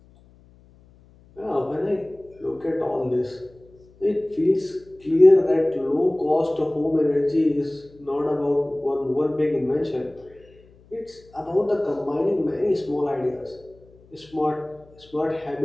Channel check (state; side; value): noise; left; hum, 27 dB below the sound